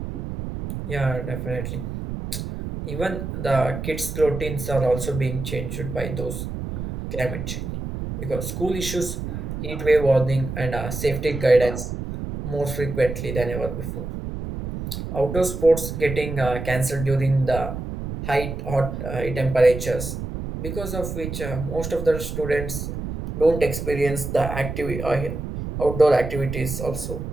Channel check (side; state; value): right; noise; rumble, 6 dB below the sound